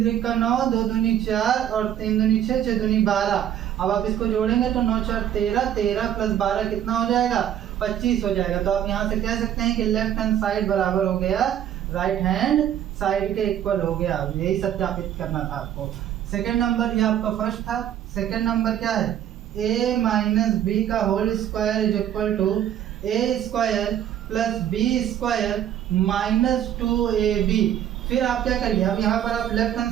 3 का 9, 2 दूनी 4 और 3 दूनी 6, 6 दूनी 12। अब आप इसको जोड़ेंगे तो 9 4 13, 13 प्लस 12 कितना हो जाएगा, 25 हो जाएगा। तो आप यहाँ से कह सकते हैं कि लेफ्ट हैंड साइड बराबर हो गया राइट हैंड साइड के इक्वल हो गया। यही सत्यापित करना था आपको। सेकंड नंबर ये आपका फर्स्ट था। सेकंड नंबर क्या है, a माइनस बी का whole square is equal to a square plus B square minus 2ab। फिर आप क्या करिए, अब यहाँ पर आप लेफ्ट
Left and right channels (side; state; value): left; quieter; 10.5 dB